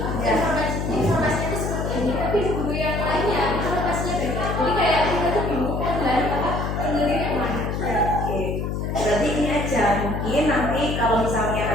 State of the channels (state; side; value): noise; left; hum, 2 dB below the sound